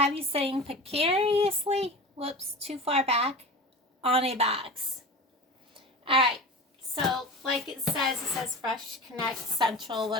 you sitting precariously, whoops, too far back, on a box. Alright, so like it says Fresh Connect, Central,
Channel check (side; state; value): both; normal; correlation 0.32